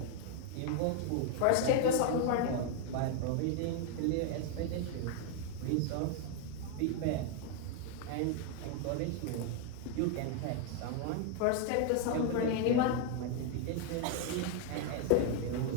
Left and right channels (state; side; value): different; both; correlation 0.00